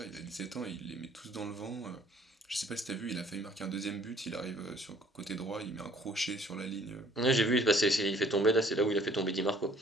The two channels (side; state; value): both; normal; correlation 0.58